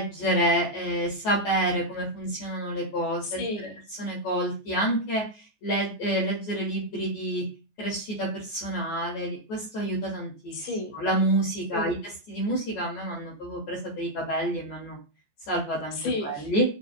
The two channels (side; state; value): right; late; 14 ms